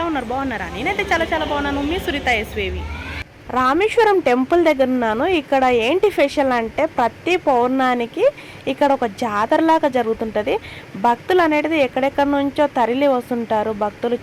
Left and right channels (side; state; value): both; identical; correlation 1.00